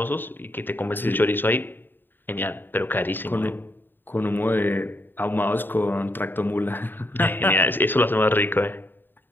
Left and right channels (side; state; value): right; late; 0.094 ms